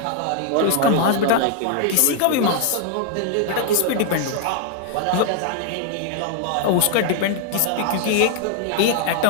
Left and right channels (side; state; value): both; different; correlation 0.00